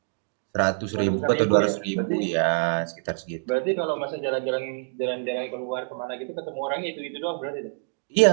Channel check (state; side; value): silent; left; digital silence